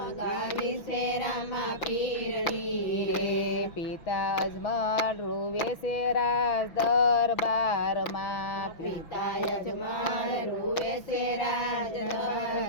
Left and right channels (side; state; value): right; late; 6.0 ms